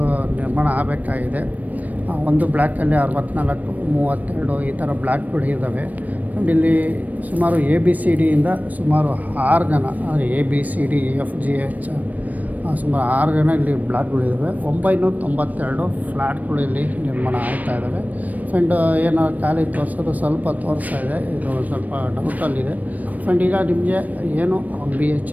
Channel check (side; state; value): left; late; 0.077 ms